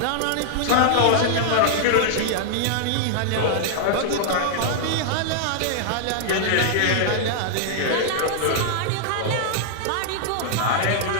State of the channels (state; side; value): different; both; correlation -0.01